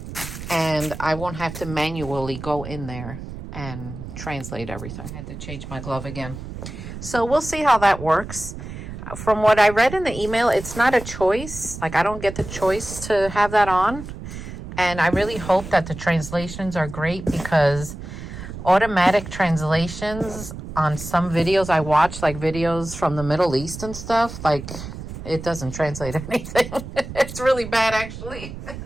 and I won't have to manually go in there and translate everything. I had to change my glove again. So we'll see how that works. From what I read in the email, it's not a choice. Like, I don't get the choice to have that on. And I really hope that the translations are great, because automatic translations on some videos I watch, like videos from the Middle East and stuff, like, it doesn't translate anything. It's really bad, actually.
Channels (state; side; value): noise; right; rumble, 10 dB below the sound